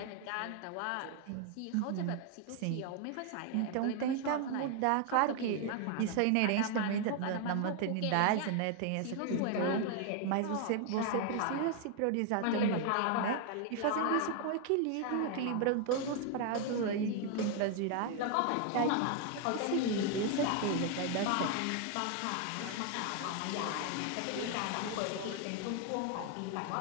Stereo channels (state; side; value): different; both; correlation 0.00